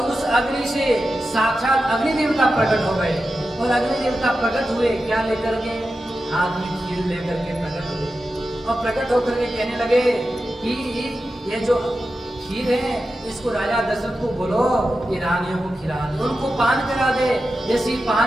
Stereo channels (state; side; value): normal; both; correlation 0.91